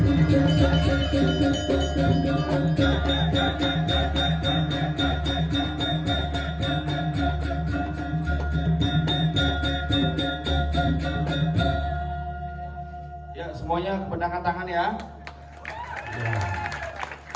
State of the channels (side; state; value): both; identical; correlation 1.00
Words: Ya, semuanya kependangan tangan ya. Ya.